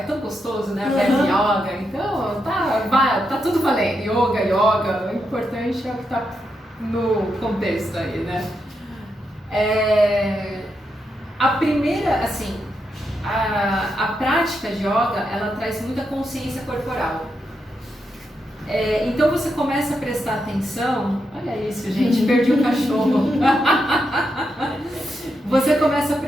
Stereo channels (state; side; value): normal; both; correlation 0.84